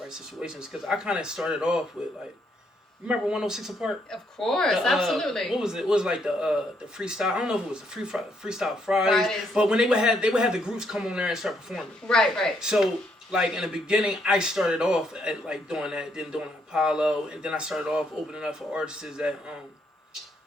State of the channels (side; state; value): both; normal; correlation 0.73